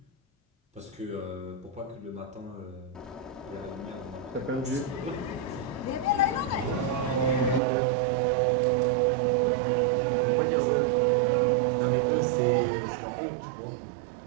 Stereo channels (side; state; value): left; drops out; at 7.6 s